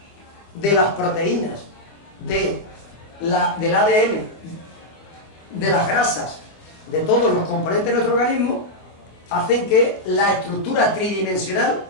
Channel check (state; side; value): late; right; 25 ms